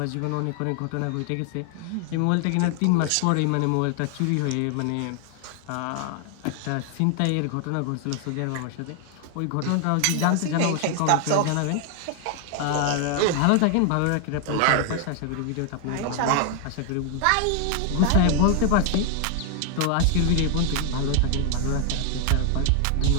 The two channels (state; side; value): different; both; correlation 0.00